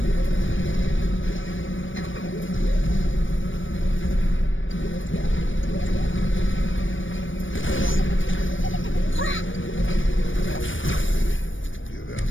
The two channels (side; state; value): right; late; 0.56 ms